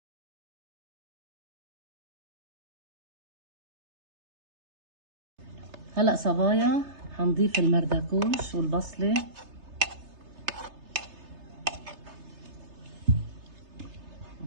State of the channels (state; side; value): late; left; 3.3 ms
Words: هلا صبايا حنضيف المردكوش والبصله